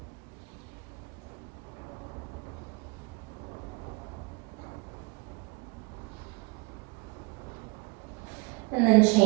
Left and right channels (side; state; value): left; quieter; 27.2 dB